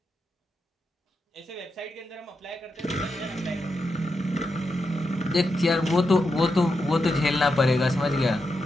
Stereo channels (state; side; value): normal; both; correlation 0.86